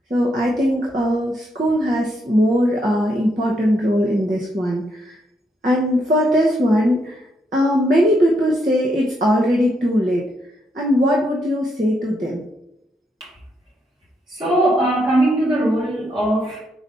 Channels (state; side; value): normal; both; correlation 0.77